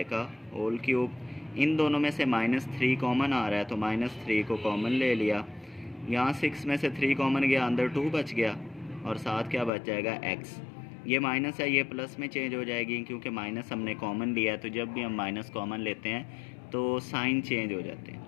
का होल क्यूब। इन दोनों में से -3 कॉमन आ रहा है, तो -3 को कॉमन ले लिया। यहाँ 6 में से 3 कॉमन गया, अंदर 2 बच गया और साथ क्या बच जाएगा x। ये माइनस है, ये प्लस में चेंज हो जाएगी, क्योंकि माइनस हमने कॉमन लिया है। तो जब भी हम माइनस कॉमन लेते हैं तो साइन चेंज हो जाते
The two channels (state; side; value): drops out; right; at 9.7 s